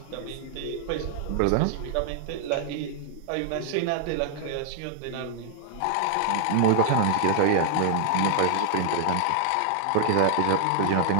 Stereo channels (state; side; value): different; both; correlation 0.00